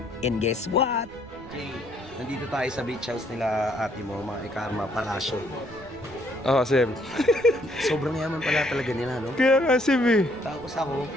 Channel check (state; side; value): noise; right; rumble, 20 dB below the sound